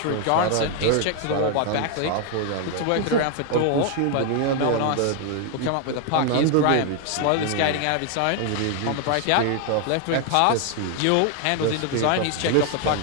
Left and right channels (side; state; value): both; different; correlation 0.00